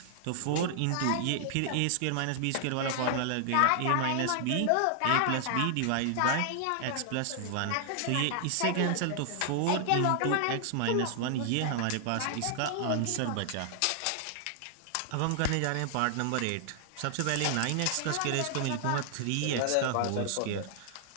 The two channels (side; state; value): both; different; correlation 0.00